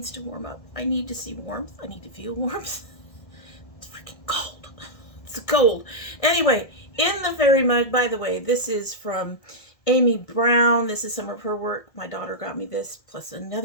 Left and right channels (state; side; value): late; right; 1.7 ms